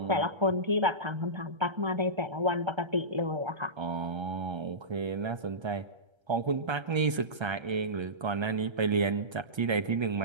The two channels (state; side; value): late; left; 1.3 ms